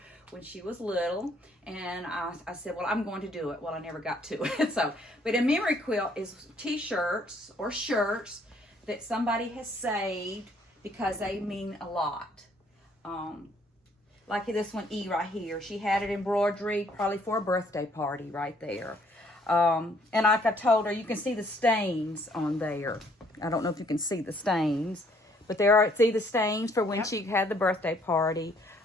when she was little, and I said, well, I'm going to do it. Well, I never got to it. But a memory quilt is t-shirts or shirts that somebody has saved because they mean a lot. Like this one, E right here. She had it embroidery probably for a birthday party right there. And like I told her, you can see the stains on there. I don't know if you can see the stains, but see the stains for when she had the birthday party.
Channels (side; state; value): both; normal; correlation 0.64